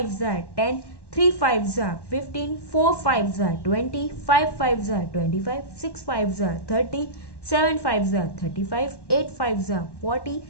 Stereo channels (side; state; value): right; late; 1.1 ms